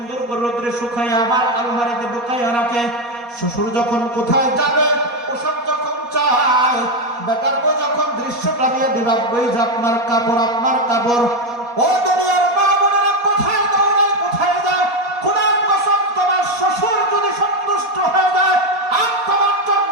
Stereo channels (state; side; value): late; left; 4.2 ms